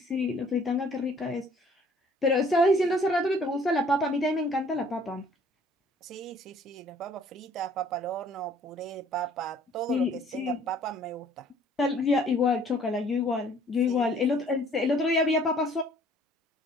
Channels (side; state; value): both; normal; correlation 0.57